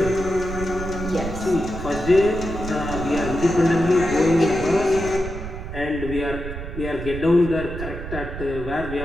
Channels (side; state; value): right; noise; rumble, 8 dB below the sound